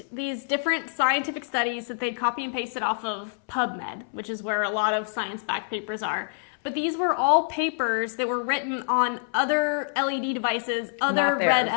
these different scientific studies that they'd copy and pasted off of PubMed, which is where a lot of science-backed papers are. But these were all papers that were written on other LED devices, other red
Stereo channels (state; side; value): silent; right; 61 dB below the other